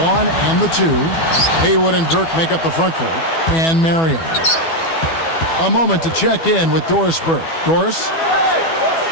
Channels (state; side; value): late; right; 12 ms